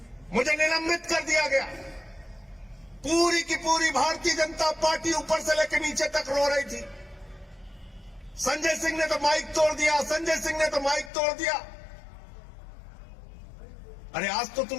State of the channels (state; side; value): drops out; right; at 11.1 s